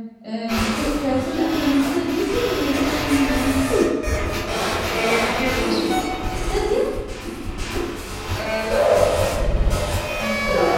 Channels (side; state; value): both; identical; correlation 1.00